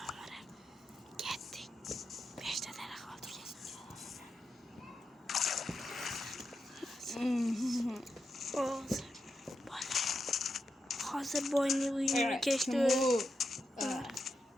o'maramiz. Ketdik. 5 ta daraxt oldik. Hozir boyni uyini kechdi.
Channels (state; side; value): normal; both; correlation 0.87